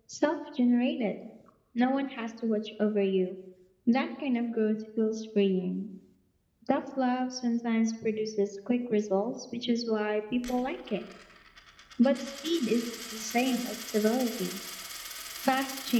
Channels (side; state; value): both; identical; correlation 1.00